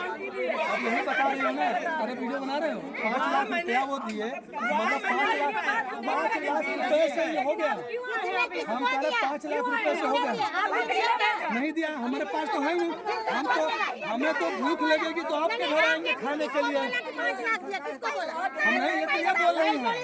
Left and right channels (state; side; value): identical; both; correlation 1.00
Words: अब यही बता रहे हो ना, अरे वीडियो बना रहे हो, 5 लाख रुपया वो दिए, मतलब 5 लाख रुपए से ये हो गया। हम कह रहे 5 लाख रुपए से हो गया, नहीं दिया, हमारे पास तो है नहीं। हम तो हमें तो भूख लगेगी तो आपके घर आएंगे खाने के लिए। हम नहीं ये तो ये बोल रही हैं।